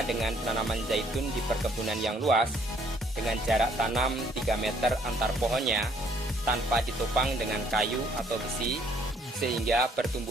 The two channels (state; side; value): normal; both; correlation 0.64